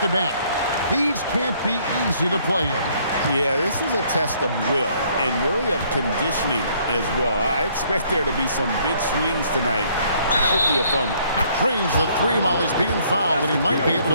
These can't be easy to play in. Yeah, this is a test of will and really of conditioning as well. I expect there to be some big swings tonight. Should be a fun one. Trains the 3 while he's being fouled, and he might be able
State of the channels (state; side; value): inverted; both; correlation -0.64